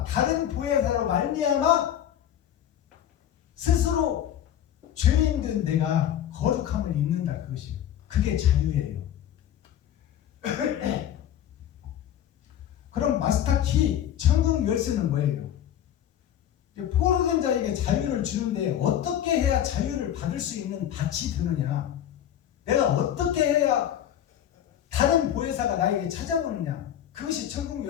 다른 보혜사로 말미암아 스스로 죄인된 내가 거룩함을 입는다. 그것이요. 그게 자유예요. 그럼 마스터키 천국 열쇠는 뭐예요? 포로된 자에게 자유를 주는데 어떻게 해야 자유를 받을 수 있는 밭이 되느냐? 내가 어떻게 해야 다른 보혜사가 나에게 찾아오느냐? 그것이 천국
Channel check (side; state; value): right; quieter; 10.6 dB